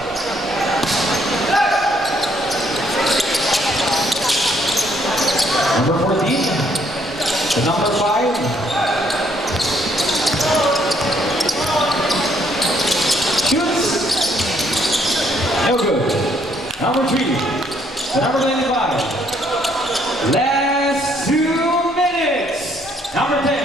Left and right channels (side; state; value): both; normal; correlation 0.68